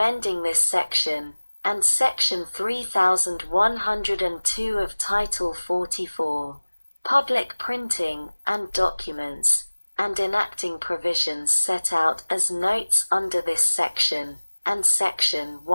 this section, and Section 3102 of Title 44, Public Printing and Documents, and enacting provisions set out as notes under this section, and Section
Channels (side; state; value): both; inverted; correlation -1.00